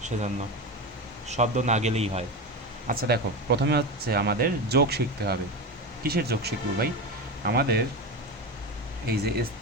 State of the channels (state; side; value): normal; both; correlation 0.21